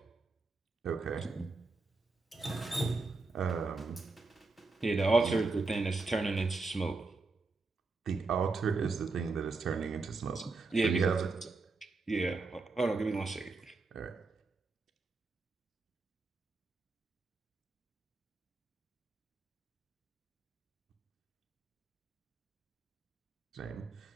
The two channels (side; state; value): left; quieter; 3.8 dB